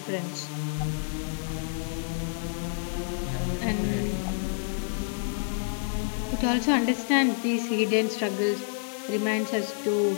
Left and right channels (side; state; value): right; silent; digital silence